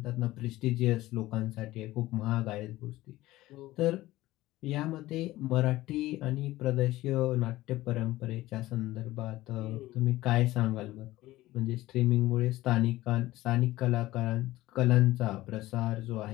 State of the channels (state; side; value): quieter; right; 17.1 dB